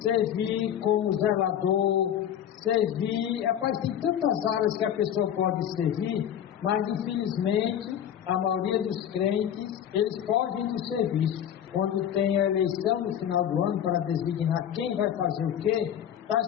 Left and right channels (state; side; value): quieter; right; 9.8 dB